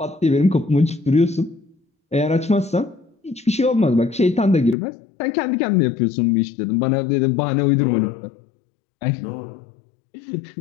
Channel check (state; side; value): drops out; right; at 4.8 s